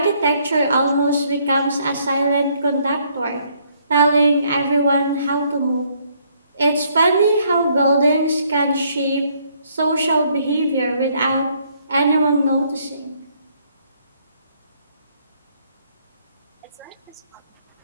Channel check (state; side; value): inverted; both; correlation -0.68